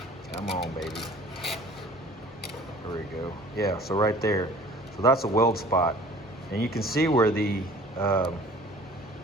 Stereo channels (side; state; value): both; normal; correlation 0.48